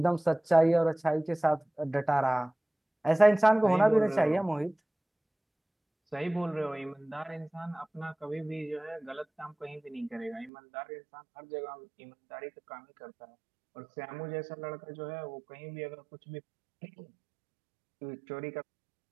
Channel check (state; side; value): drops out; left; at 10.5 s